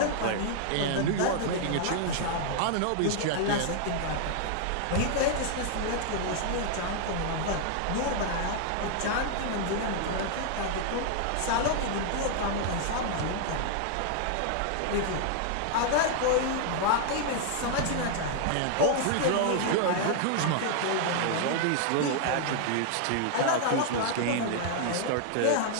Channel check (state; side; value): different; both; correlation 0.00